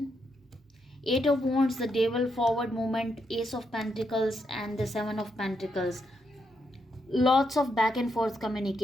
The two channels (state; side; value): normal; both; correlation 0.80